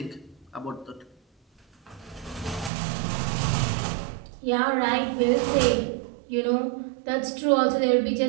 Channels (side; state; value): left; drops out; at 2.7 s